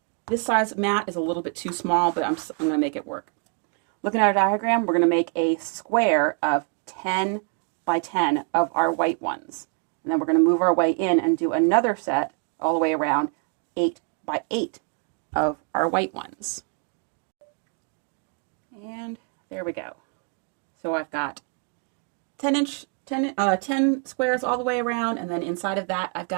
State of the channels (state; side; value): quieter; left; 37.8 dB